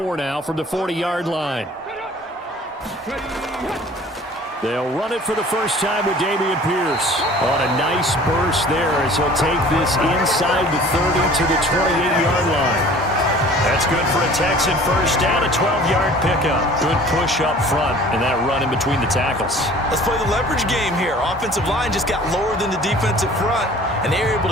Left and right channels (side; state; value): both; normal; correlation 0.48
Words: now from the 40-yard line. They'll run it for the first time with Dameon Pierce on a nice burst there as he'll take this inside the 30 to the 28-yard line. That's good for a Texan first down, a 12-yard pickup. Good push up front and that run in between the tackles. Let's play the leverage game here. Offensive line just got lower than the defensive front, and they were able